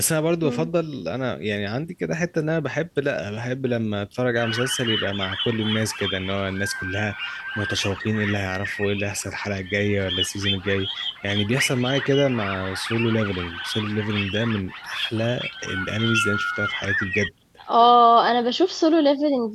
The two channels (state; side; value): identical; both; correlation 1.00